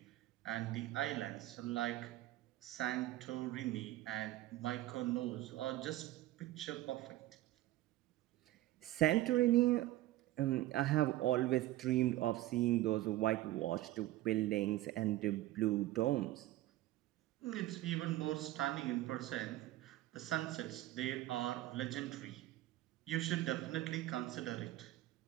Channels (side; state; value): left; quieter; 15.8 dB